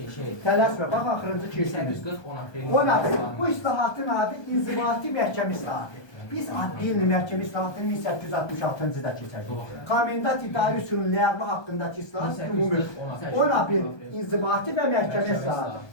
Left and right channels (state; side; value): late; right; 1.2 ms